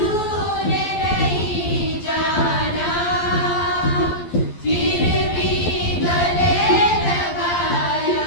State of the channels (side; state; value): right; late; 12 ms